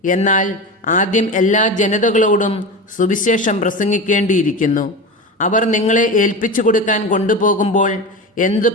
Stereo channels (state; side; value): normal; both; correlation 0.26